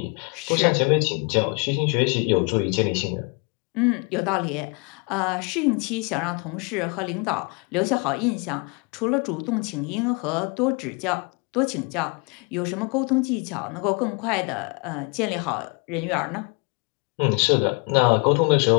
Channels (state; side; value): quieter; right; 32.4 dB